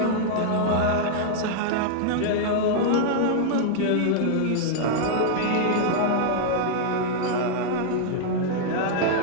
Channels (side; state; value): both; different; correlation -0.01